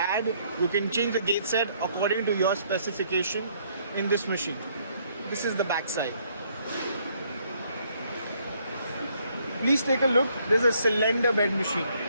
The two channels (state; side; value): inverted; both; correlation -0.67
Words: You can change the gauge set according to your specification in this machine. This is the back side. Please take a look. This is a cylinder bed machine.